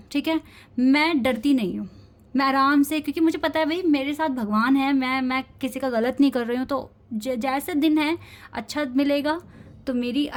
ठीक है, मैं डरती नहीं हूँ। मैं आराम से, क्योंकि मुझे पता है भाई मेरे साथ भगवान है, मैं किसी का गलत नहीं कर रही हूँ। तो जैसे दिन है, अच्छा मिलेगा तो मेरी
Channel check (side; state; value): both; identical; correlation 1.00